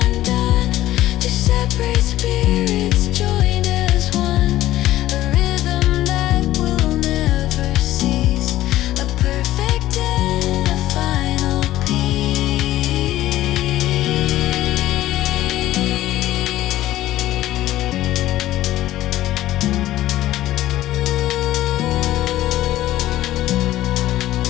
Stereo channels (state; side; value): quieter; right; 14.8 dB